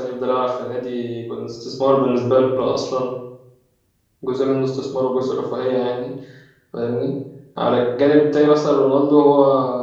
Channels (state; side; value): identical; both; correlation 1.00